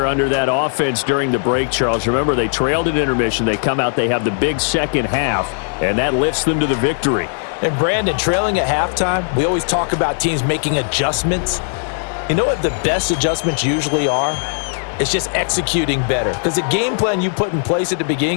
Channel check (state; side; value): silent; right; digital silence